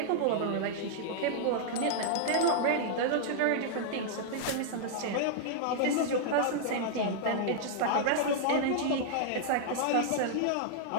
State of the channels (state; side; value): different; both; correlation -0.01